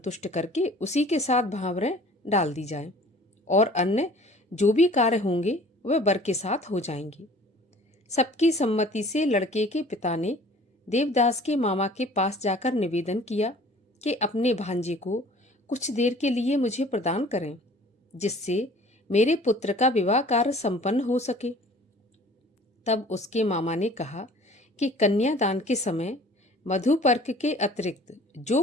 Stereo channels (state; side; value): normal; both; correlation 0.49